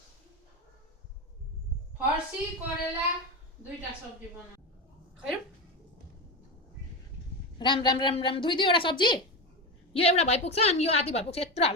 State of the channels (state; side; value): normal; both; correlation 0.18